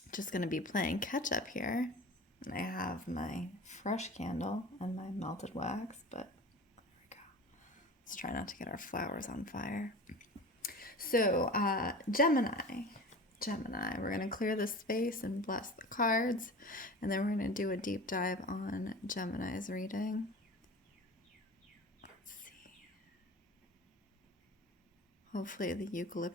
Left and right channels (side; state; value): both; normal; correlation 0.36